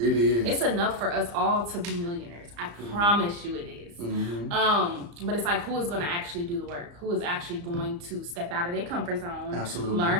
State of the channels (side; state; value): left; late; 34 ms